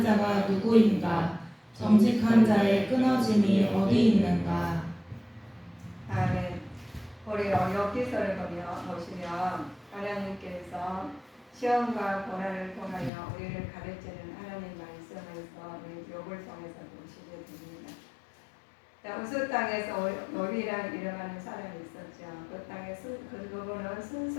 자가 누구인가? 정직한 자의 끊어짐이 어디 있는가? 아멘. 우리 엽기서를 보시면 하나님께서 시험과 고난을 통하여 우리를 가르치는 하나님 말씀에서 우리 욥을 통해서 보시게 됩니다. 우스 땅에서 욥이라는 이름하는 사람이 있었죠. 그 땅에 그분은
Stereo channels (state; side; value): drops out; right; at 13.1 s